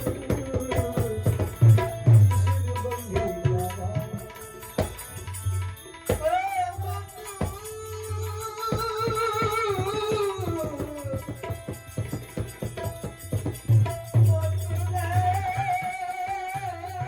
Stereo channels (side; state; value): both; identical; correlation 1.00